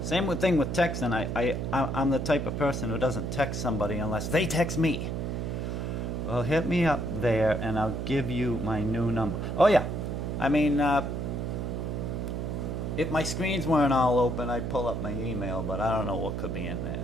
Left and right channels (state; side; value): noise; right; hum, 3 dB below the sound